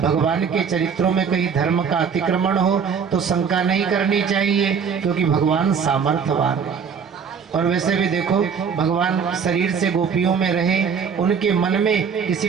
के चरित्रों में कहीं धर्म का अतिक्रमण हो तो शंका नहीं करनी चाहिए, क्योंकि भगवान सामर्थ्यवान है। और वैसे भी देखो, भगवान शरीर से गोपियों में रहे, उनके मन में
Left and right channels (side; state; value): left; quieter; 6.5 dB